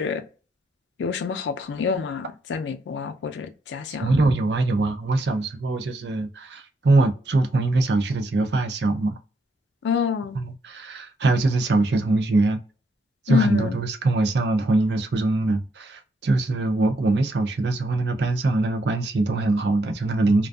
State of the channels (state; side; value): normal; both; correlation 0.77